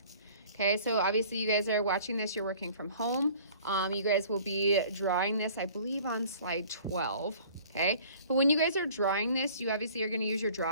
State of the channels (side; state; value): both; inverted; correlation -0.50